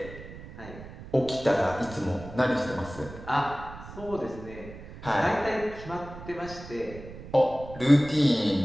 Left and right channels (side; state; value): right; noise; rumble, 14 dB below the sound